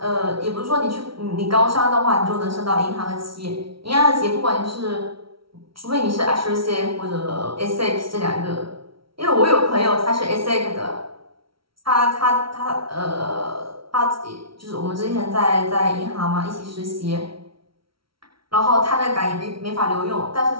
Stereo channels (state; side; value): late; left; 0.75 ms